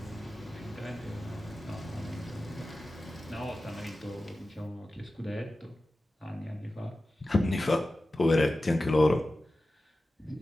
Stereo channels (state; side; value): normal; both; correlation 0.94